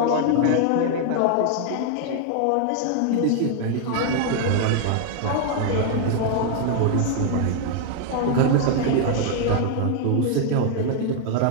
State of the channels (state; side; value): different; both; correlation 0.00